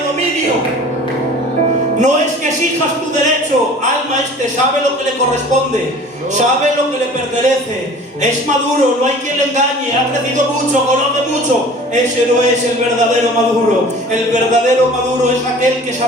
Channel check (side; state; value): both; normal; correlation 0.45